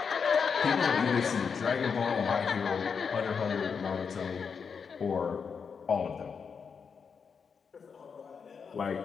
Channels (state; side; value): quieter; right; 6.1 dB